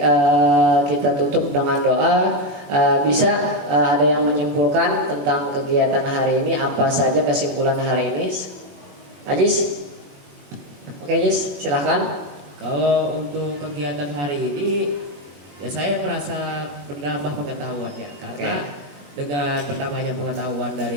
kita tutup dengan doa. Bisa ada yang menyimpulkan tentang kegiatan hari ini, apa saja kesimpulan hari ini? Ajis? Oke Ajis, silahkan. Kalau untuk kegiatan hari ini, ya saya merasa menambah pengetahuan ya, karena dengan bertambahnya pengetahuan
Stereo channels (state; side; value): late; left; 21 ms